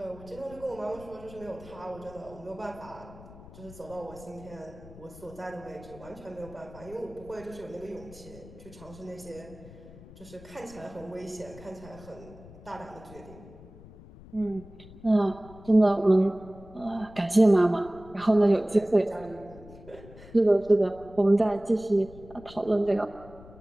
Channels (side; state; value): left; noise; rumble, 19 dB below the sound